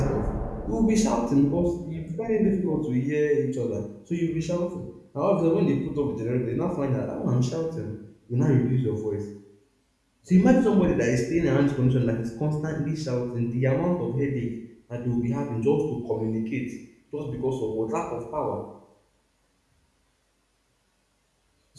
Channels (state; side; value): identical; both; correlation 1.00